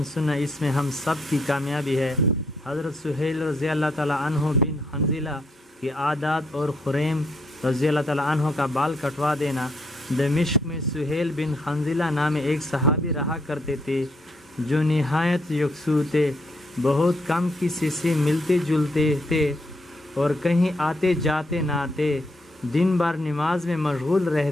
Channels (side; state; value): both; normal; correlation 0.74